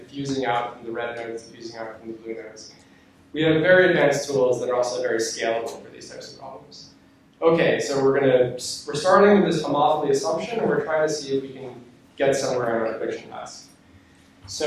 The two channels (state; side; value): identical; both; correlation 1.00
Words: out from the red nodes, diffusing out from the blue nodes. We have very advanced tools that are also very scalable for these types of problems. Okay, so we're starting with this homophily assumption, and we're trying to see if we can get somewhere on our prediction task.